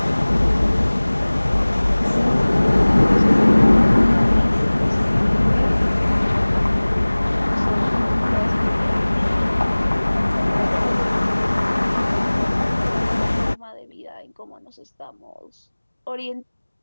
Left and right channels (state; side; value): inverted; both; correlation -1.00